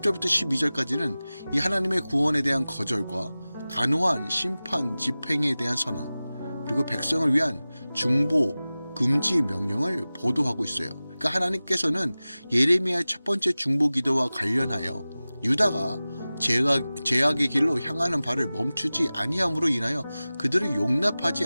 12절까지는 이 하나님의 구원에 대한 거절과 단호한 심판 집행에 대한 선언, 그리고 백성을 위한 중보, 금지 명령을 보도하고 있어요. 그러니까 하나님께서는 예레미야의 첫 번째 중보 기도와 관련하여 유다가 죄악의 길로 향하는 바를 멈추지 아니함으로 인하여 그들을 용납하지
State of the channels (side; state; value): both; inverted; correlation -0.97